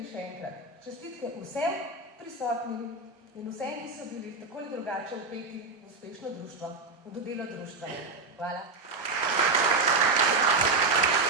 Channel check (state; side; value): quieter; left; 3.7 dB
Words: še enkrat. Čestitke vsem prisotnim in vsem, ki so bili tako ali drugače vpeti v uspešno društvo, v delo društva. Hvala.